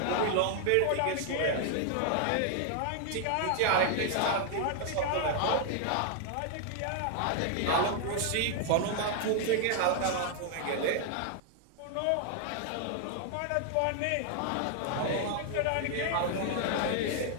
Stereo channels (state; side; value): different; both; correlation 0.00